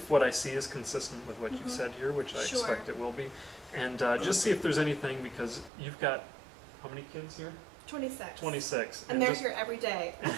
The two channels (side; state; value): left; drops out; at 5.7 s